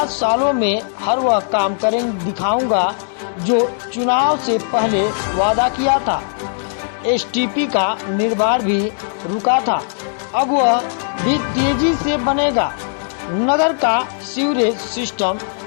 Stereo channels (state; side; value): silent; right; digital silence